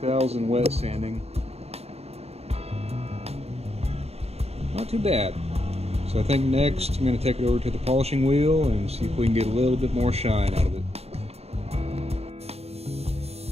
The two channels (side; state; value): left; late; 0.30 ms